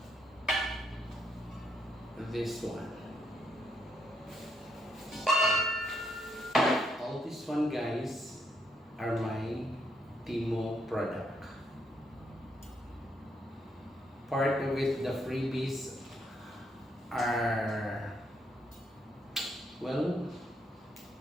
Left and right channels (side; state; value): both; normal; correlation 0.74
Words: This one. All this one, guys, are my Temu product. Part of it, the freebies are, well,